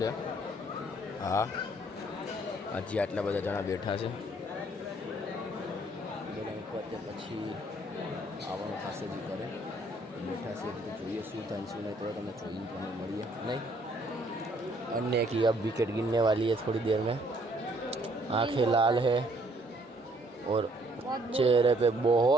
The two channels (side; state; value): both; normal; correlation 0.64